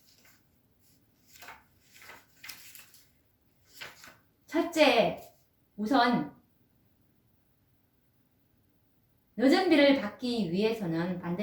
첫째, 우선 늦은 비를 받기 위해서는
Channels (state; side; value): identical; both; correlation 1.00